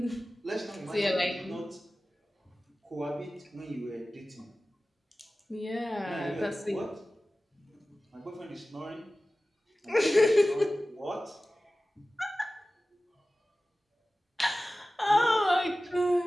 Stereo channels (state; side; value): normal; both; correlation 0.96